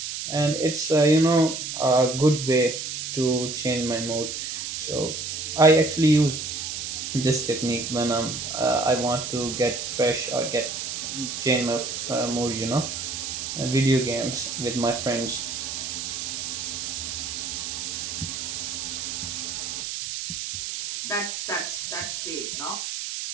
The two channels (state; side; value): noise; right; hiss, 5 dB below the sound